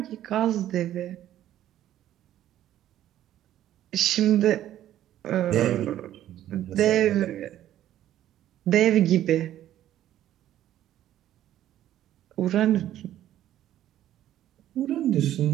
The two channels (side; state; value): left; quieter; 12.4 dB